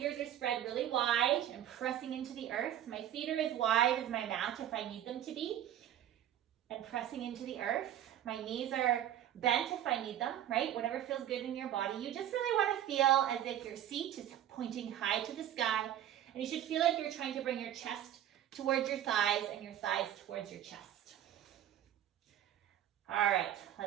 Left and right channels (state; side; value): quieter; left; 11.4 dB